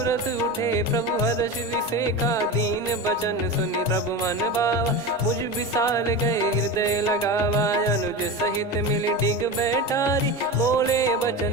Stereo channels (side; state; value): both; normal; correlation 0.24